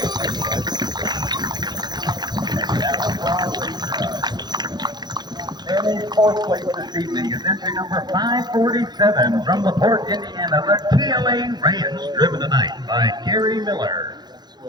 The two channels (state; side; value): late; left; 0.20 ms